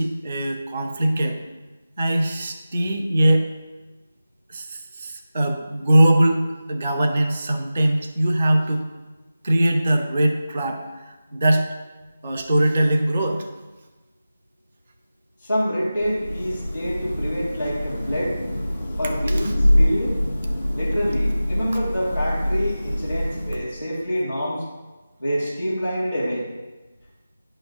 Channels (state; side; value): inverted; both; correlation -0.96